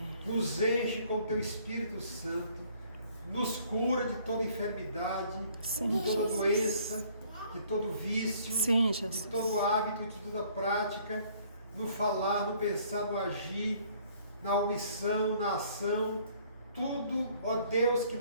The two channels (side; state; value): both; inverted; correlation -0.59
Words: nos enche com o teu Espírito Santo, nos cura de toda enfermidade, Sim, de toda Jesus. doença, de todo vício, Sim, de Jesus. todo hábito, de toda prática, no falar, no pensar, no agir, na omissão, na ação, tudo, ó Deus, que